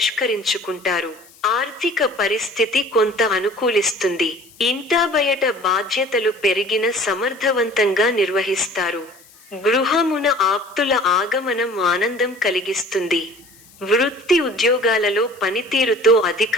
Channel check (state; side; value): noise; left; hiss, 26 dB below the sound